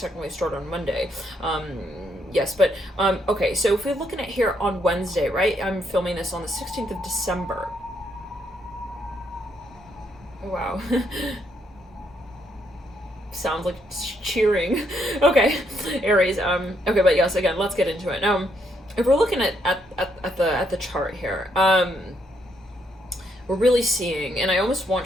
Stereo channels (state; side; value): normal; both; correlation 0.75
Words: start on Monday. Yes, but okay, so if we're looking at here on Wednesday, right? I'm filming this on the 16th of December. Wow. Sounds like cheering. Okay, Aries. Okay, but yes, again, let's get into it. If we're looking at the chart here, we're really seeing, and I almost